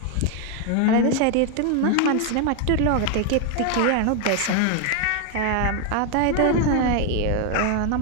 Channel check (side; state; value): both; different; correlation 0.01